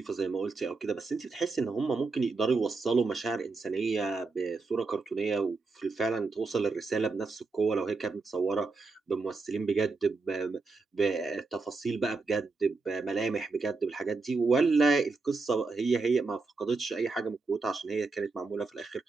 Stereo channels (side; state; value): left; quieter; 4.0 dB